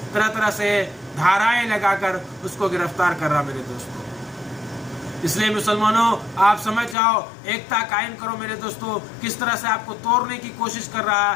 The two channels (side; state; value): right; drops out; at 7.0 s